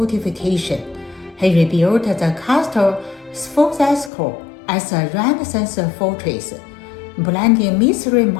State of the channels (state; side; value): drops out; right; at 4.1 s